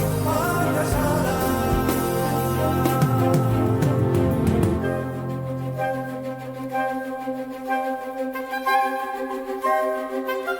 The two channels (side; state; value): both; identical; correlation 1.00